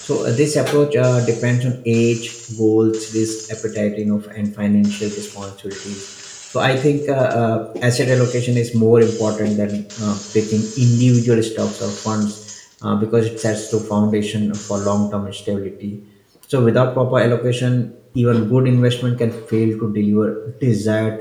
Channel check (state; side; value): identical; both; correlation 1.00